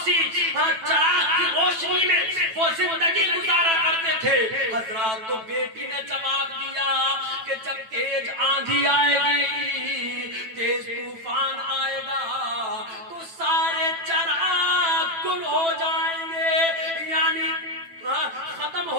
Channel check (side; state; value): left; late; 9.1 ms